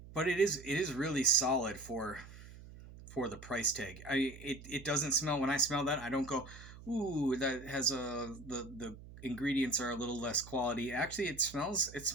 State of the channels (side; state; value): right; noise; hum, 16 dB below the sound